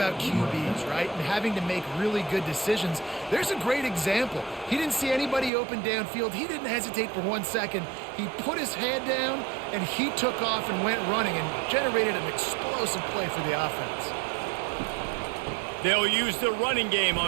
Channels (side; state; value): left; drops out; at 5.5 s